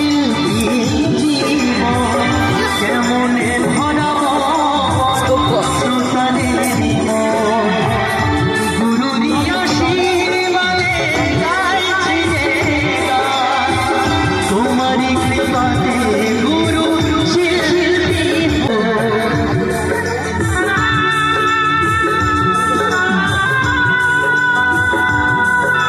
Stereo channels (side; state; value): both; identical; correlation 1.00